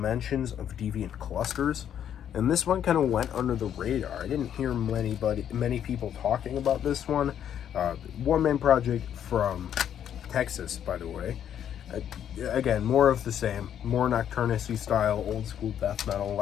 of Deviant Clusters. And this one kind of went under the radar. I didn't hear many people talking about this one. One-man project from Texas, by the way. Again, more of the same. More Nocturnus-y style, old school death metal.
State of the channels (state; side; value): quieter; right; 9.6 dB